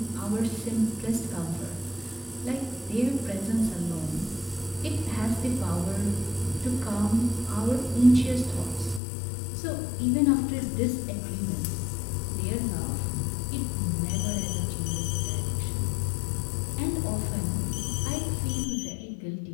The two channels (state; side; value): drops out; right; at 9.0 s